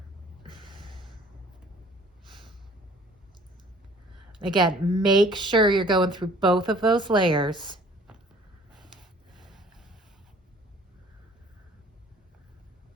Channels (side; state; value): both; normal; correlation 0.53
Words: Again, make sure you're going through both of those layers.